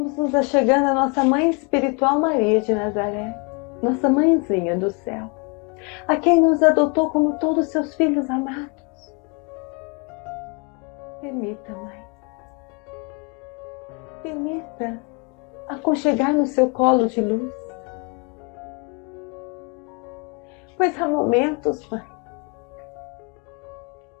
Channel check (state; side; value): quieter; right; 31.7 dB